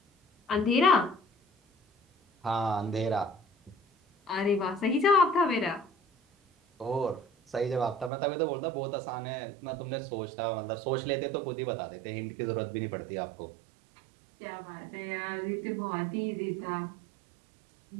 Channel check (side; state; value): left; drops out; at 8.1 s